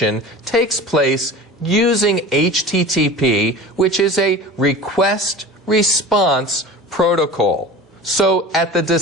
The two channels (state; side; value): normal; both; correlation 0.36